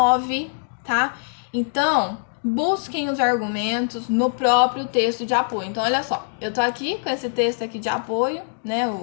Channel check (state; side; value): silent; right; digital silence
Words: tá? Então, busquem os argumentos no próprio texto de apoio. Então, olha só, eu tô aqui com esse texto aqui de apoio, né?